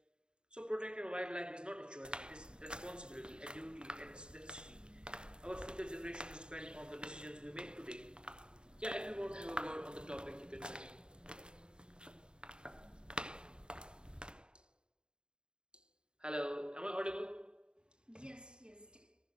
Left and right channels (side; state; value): left; late; 0.049 ms